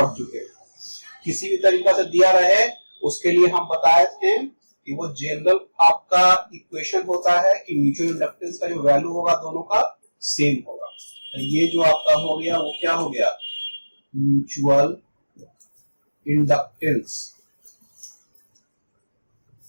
चुके हैं. किसी भी तरीका से दिया रहे उसके लिए हम बताए थे कि वो जनरल आपका इक्वेशन होता है कि म्यूचुअल इंडक्टेंस का जो वैल्यू होगा दोनों का सेम होगा. तो ये जो आपका हो गया वो क्या हो गया, म्यूचुअल इंडक्टेंस.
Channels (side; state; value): both; inverted; correlation -1.00